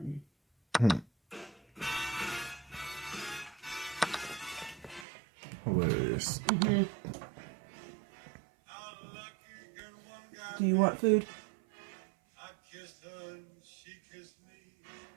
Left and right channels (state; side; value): drops out; left; at 5.1 s